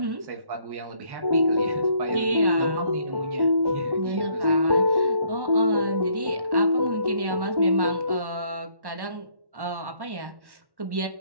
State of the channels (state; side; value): late; left; 1.1 ms